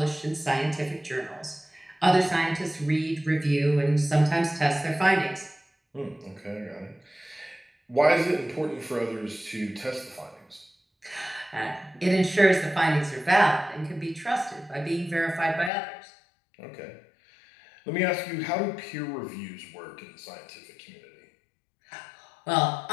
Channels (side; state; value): right; drops out; at 15.7 s